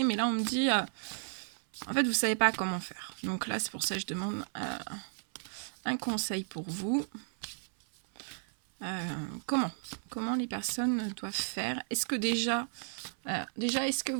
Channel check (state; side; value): silent; left; 55 dB below the other